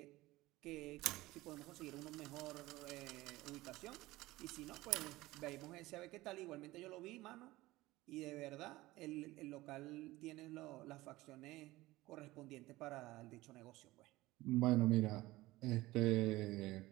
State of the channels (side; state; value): left; quieter; 18.7 dB